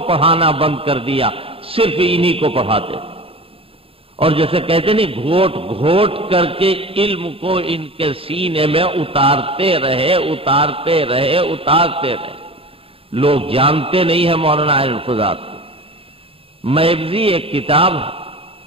پڑھانا بند کر دیا، صرف انہی کو پڑھاتے، اور جیسے کہتے نہیں گھوٹ گھوٹ کر کے علم کو ان کے سینے میں اتارتے رہے اتارتے رہے اتارتے رہے۔ لوگ جانتے نہیں ہیں مولانا اہل القضات کو۔ میبزی ایک کتاب ہے،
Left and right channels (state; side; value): late; left; 0.27 ms